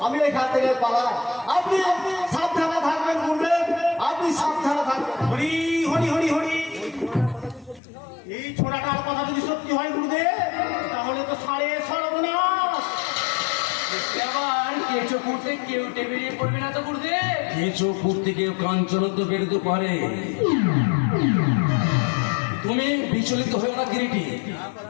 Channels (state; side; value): drops out; right; at 7.8 s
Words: আমি এখান থেকে পালাই। আপনি সাবধানে থাকবেন গুরুদেব, আপনি সাবধানে থাকবেন। হরি হরি হরি হরি। এই ছোড়াটার কথা যদি সত্যি হয় গুরুদেব, তাহলে তো সাড়ে সর্বনাশ। আবার কেঁচো করতে কেউ টেবিলে পড়বে না তো গুরুদেব? কেঁচো করতে কেউ কাঞ্চন তো বেরোতে পারে, তুমি বিচলিত হয়েও না কিরিটি,